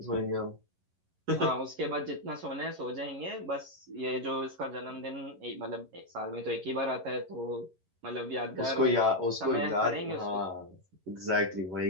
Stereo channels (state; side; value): late; left; 11 ms